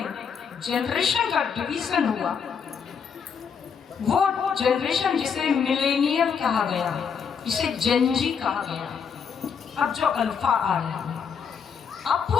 जनरेशन का डिवीजन हुआ, वो जनरेशन जिसे मिलेनियल कहा गया, जिसे जेनजी कहा गया, अब जो अल्फा आ रहा है, अब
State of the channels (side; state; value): right; quieter; 6.7 dB